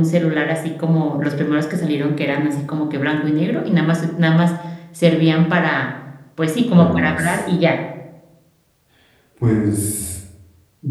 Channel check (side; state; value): both; identical; correlation 1.00